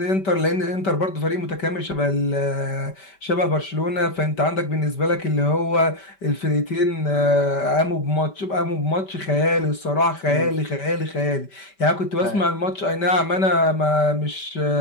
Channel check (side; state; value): right; late; 5.1 ms